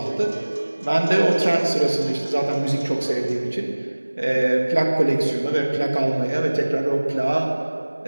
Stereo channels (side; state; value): both; inverted; correlation -1.00